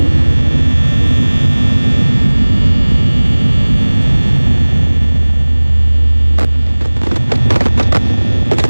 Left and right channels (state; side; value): inverted; both; correlation -1.00